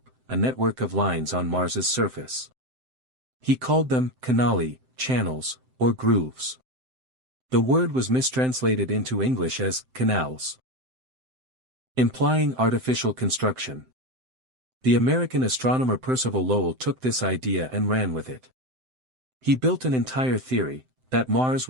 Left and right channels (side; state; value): left; late; 7.8 ms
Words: a network of lines on Mars's surface. He called them canali, channels, or grooves. The word was mistranslated into English as canals, implying artificial construction. The American astronomer Percival Lowell took this idea and ran with it. He built an entire theory, that Mars